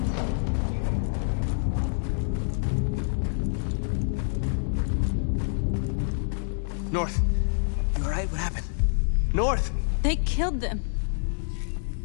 North, you alright? What happened? North! They killed them.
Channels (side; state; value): right; silent; digital silence